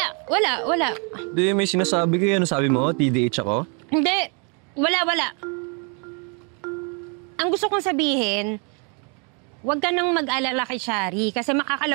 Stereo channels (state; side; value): quieter; left; 36.5 dB